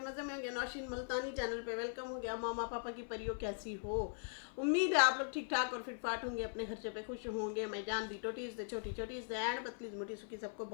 में होंगे। नौशीन मुल्तानी चैनल पे वेलकम हो गया। मामा पापा की परियों कैसी हो? उम्मीद है आप लोग ठीक ठाक और फिट फाट होंगे, अपने खर्चे पे खुश होंगे। मैं जान दी टोटीज दे छोटी छोटी एंड पतली मोटी सुखी, सबको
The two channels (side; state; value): right; silent; 51 dB below the other